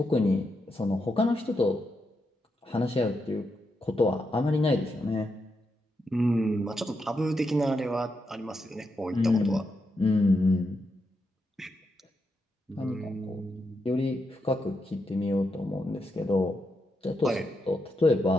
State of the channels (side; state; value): both; normal; correlation 0.84